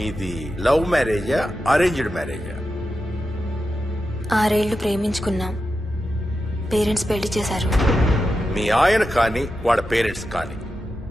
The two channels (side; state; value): both; normal; correlation 0.90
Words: లవ్ మ్యారేజా అరేంజ్డ్ మ్యారేజా? 6 ఏళ్లు ప్రేమించుకున్నాం. పేరెంట్స్ పెళ్లి చేశారు. మీ ఆయన కానీ వాళ్ళ పేరెంట్స్ కానీ